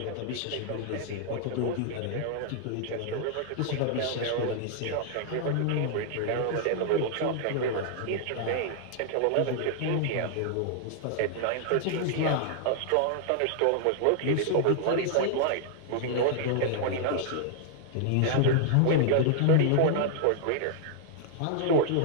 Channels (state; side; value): different; both; correlation -0.01